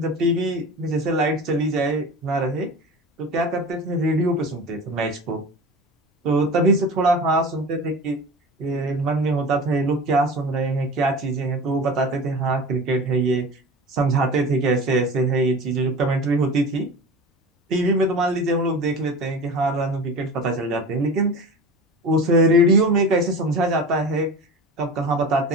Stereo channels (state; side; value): normal; both; correlation 0.34